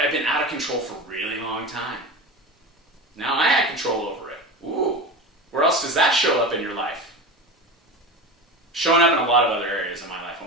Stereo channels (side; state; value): both; normal; correlation 0.27